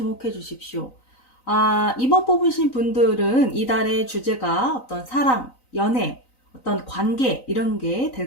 주십시오. 2번 뽑으신 분들은 이달의 주제가 어떤 사랑, 연애, 어떤 관계 이런 게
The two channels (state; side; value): late; right; 3.9 ms